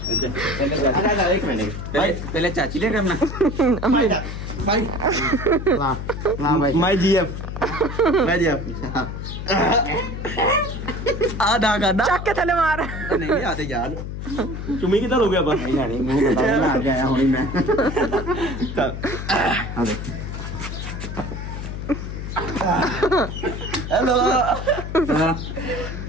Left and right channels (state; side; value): noise; left; hum, 6 dB below the sound